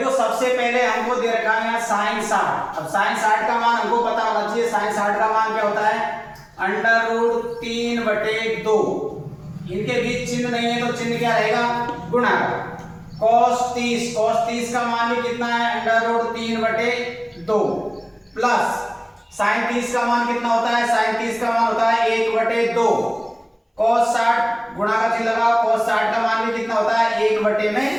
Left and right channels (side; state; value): both; identical; correlation 1.00